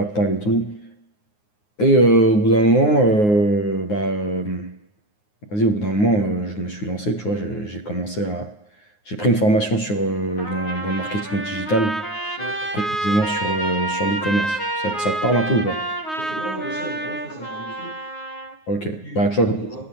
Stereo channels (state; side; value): late; right; 9.6 ms